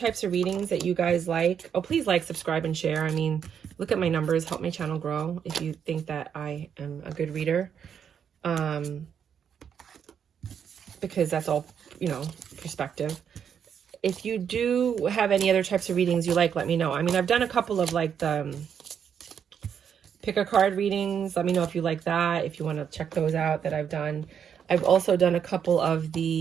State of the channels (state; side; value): quieter; left; 7.9 dB